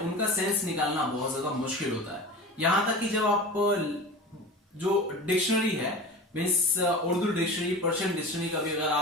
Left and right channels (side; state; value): both; normal; correlation 0.34